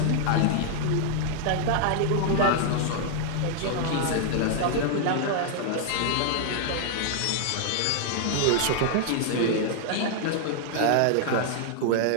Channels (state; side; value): different; both; correlation -0.01